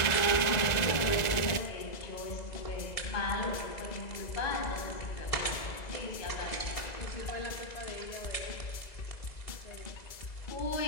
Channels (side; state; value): right; late; 2.0 ms